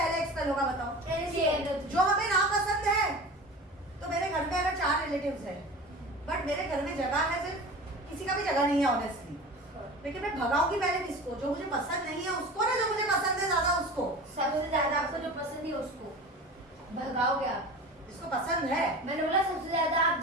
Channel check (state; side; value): normal; both; correlation 0.35